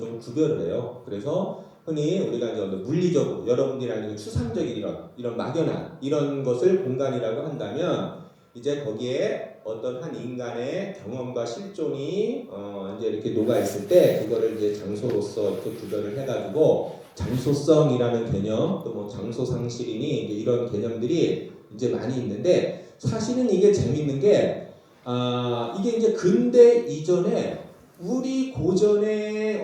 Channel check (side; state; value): both; identical; correlation 1.00